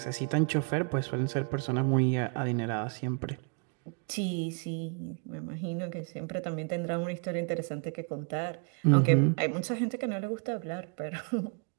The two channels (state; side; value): quieter; left; 37.0 dB